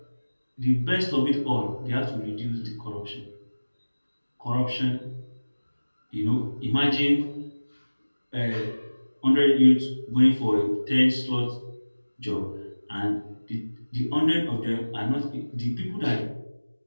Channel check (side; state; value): both; inverted; correlation -1.00